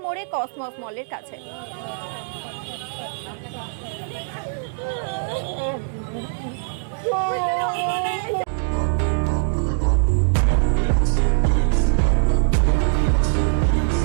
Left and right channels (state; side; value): silent; left; digital silence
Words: মোড়ে কসমস মলের কাছে।